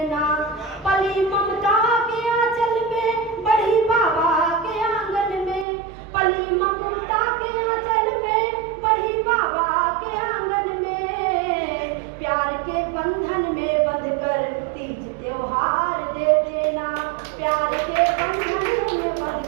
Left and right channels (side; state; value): left; drops out; at 5.7 s